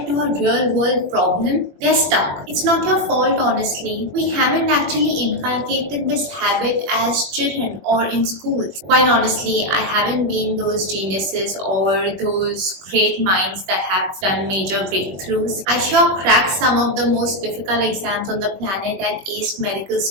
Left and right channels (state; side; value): late; left; 21 ms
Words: to a real world problem, they're stuck. It's not your fault, honestly. We haven't actually inculcated this habit as children or in schools. Quite honestly, I haven't been those geniuses or those great minds that have done major breakthroughs. I sure cracked some of the most difficult exams on the planet and aced medical